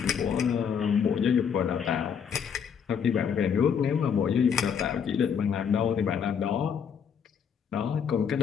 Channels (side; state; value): right; quieter; 7.3 dB